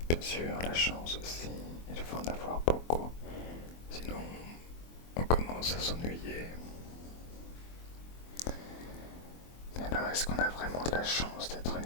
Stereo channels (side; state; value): right; late; 24 ms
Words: bien sûr, la chance aussi, il faut en avoir beaucoup. Sinon, on commence à s'ennuyer. Mais alors, est-ce qu'on a vraiment de la chance d'être